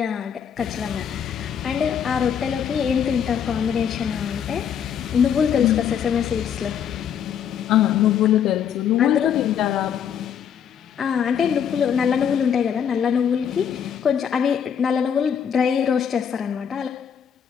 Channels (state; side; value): quieter; right; 8.3 dB